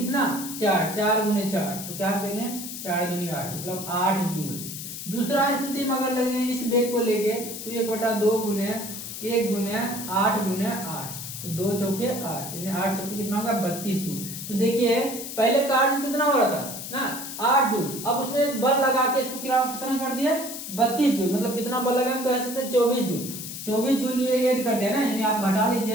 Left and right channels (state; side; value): noise; left; hiss, 8 dB below the sound